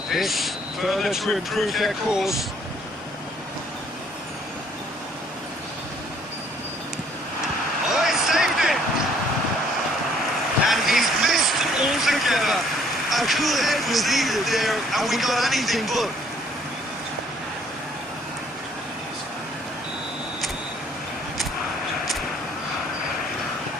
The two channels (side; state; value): both; normal; correlation 0.62